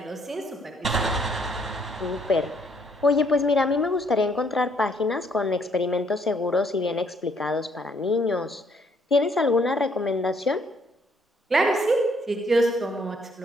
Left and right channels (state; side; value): normal; both; correlation 0.67